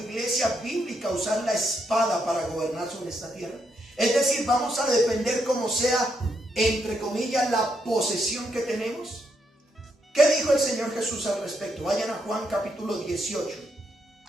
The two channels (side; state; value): both; normal; correlation 0.79